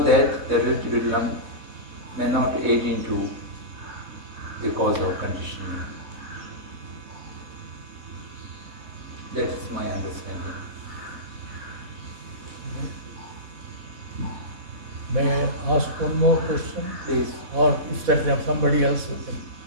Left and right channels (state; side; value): late; left; 4.1 ms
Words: that the relative realm may not aid into the cause of conditioning. That is my understanding. May I ask one more question? Please. Or if there is somebody else who can.